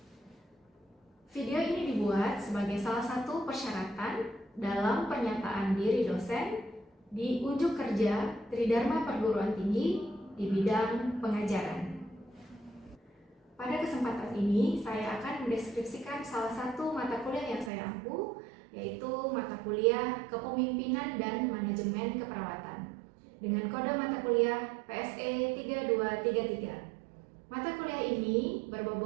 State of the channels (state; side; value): drops out; left; at 17.7 s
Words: Video ini dibuat sebagai salah satu persyaratan dalam pernyataan diri dosen di unjuk kerja Tridharma Perguruan Tinggi di bidang pengajaran. Pada kesempatan ini, saya akan mendeskripsikan salah satu mata kuliah yang saya ampu, yaitu mata kuliah Kepemimpinan dan Manajemen Keperawatan dengan kode mata kuliah PSE 3233. Mata kuliah ini